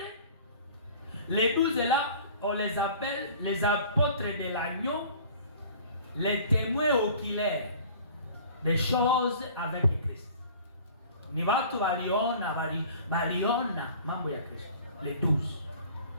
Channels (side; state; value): both; inverted; correlation -0.47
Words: les 12 là, on les appelle les apôtres de l'agneau, les témoins oculaires des choses avec Christ. Ni watu waliona mambo ya Kristo. Les 12.